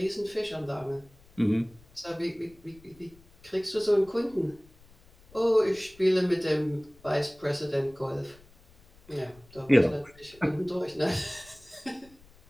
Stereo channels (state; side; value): noise; left; rumble, 26 dB below the sound